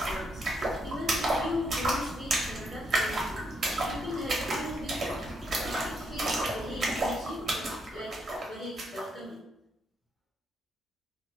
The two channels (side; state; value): both; normal; correlation 0.76